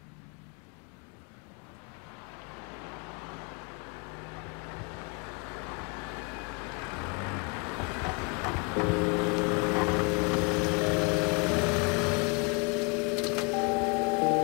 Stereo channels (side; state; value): right; quieter; 32.5 dB